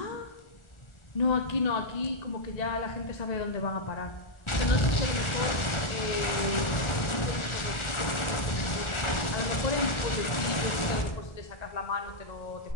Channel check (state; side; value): late; right; 1.4 ms